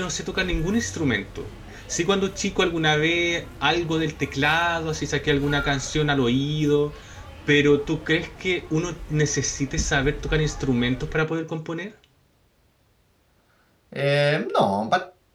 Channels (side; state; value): both; identical; correlation 1.00